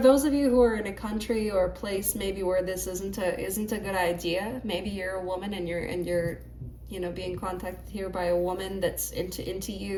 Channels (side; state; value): both; identical; correlation 1.00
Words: of you who are in a country or a place maybe where this isn't a good idea, maybe you're a woman and you're you know being contacted here by a woman that's into